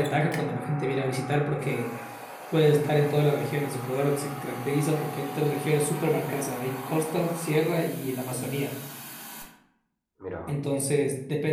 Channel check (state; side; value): identical; both; correlation 1.00